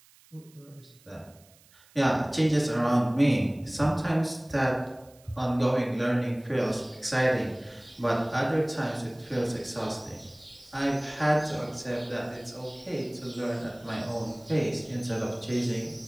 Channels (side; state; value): right; noise; hiss, 28 dB below the sound